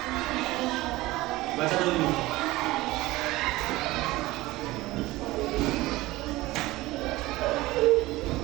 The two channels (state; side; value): quieter; left; 18.9 dB